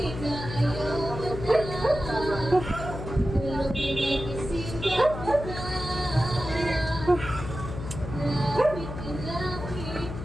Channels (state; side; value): noise; left; hum, 8 dB below the sound